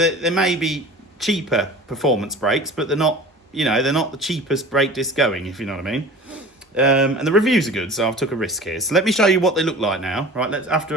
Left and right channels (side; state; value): both; normal; correlation 0.39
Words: may be cheaper performance brakes, but they're not, you know, they're not the cheapest brake disc going, if you know what I mean. And the reviews are good, so I've took a risk here. So let me show you what they look like now, right?